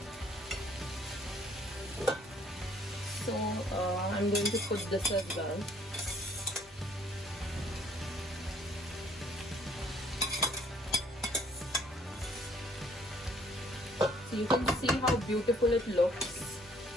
So I'm going to put this as well. So you can see how beautiful it looks.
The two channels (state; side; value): normal; both; correlation 0.61